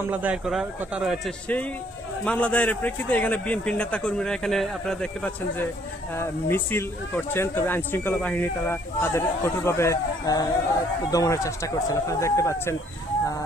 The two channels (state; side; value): normal; both; correlation 0.63